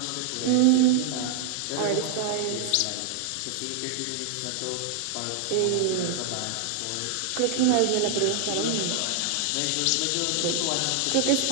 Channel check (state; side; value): different; both; correlation 0.00